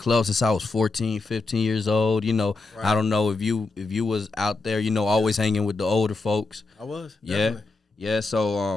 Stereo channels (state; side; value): quieter; right; 3.5 dB